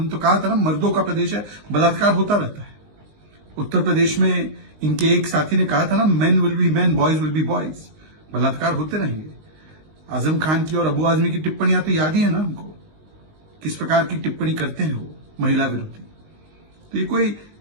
तो कहा था ना, मर्दों का प्रदेश है, बलात्कार होता रहता है। उत्तर प्रदेश में इनके एक साथी ने कहा था ना, men will be main, boys will be boys, बलात्कार होते रहेंगे। आजम खान की और अबू आजमी की टिप्पणियां तो याद ही है ना हमको, किस प्रकार की टिप्पणी करते हैं वो महिला विरोधी। तो ये कोई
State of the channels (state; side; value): late; left; 19 ms